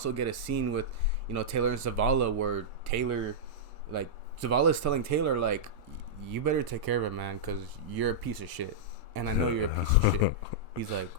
get a scene with Taylor and Zavala, where Taylor, like, Zavala is telling Taylor, like, you better take care of him, man, because you're a piece of shit, and I know you're a piece of shit. He's like,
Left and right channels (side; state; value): both; normal; correlation -0.09